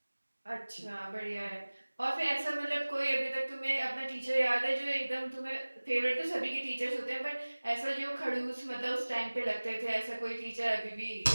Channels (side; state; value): both; inverted; correlation -1.00